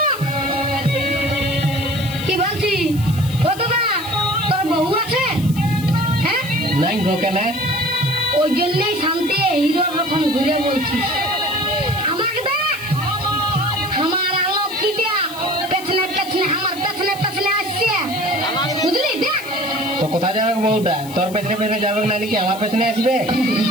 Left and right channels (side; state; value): left; noise; hiss, 16 dB below the sound